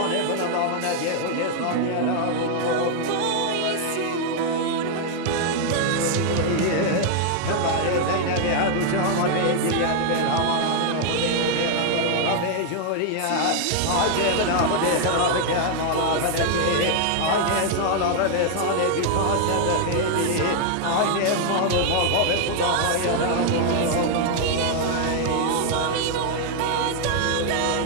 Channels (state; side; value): different; both; correlation 0.00